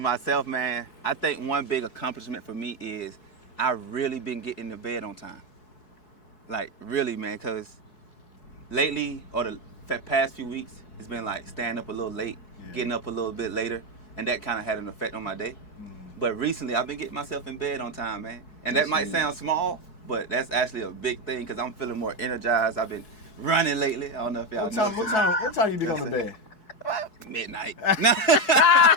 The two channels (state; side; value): late; right; 4.7 ms